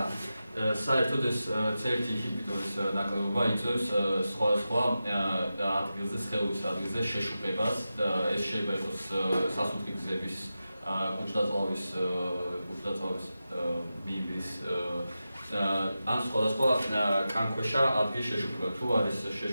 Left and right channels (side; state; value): both; inverted; correlation -0.92